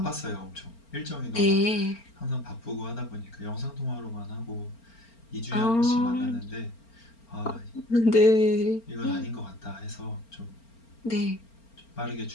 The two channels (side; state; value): right; late; 4.4 ms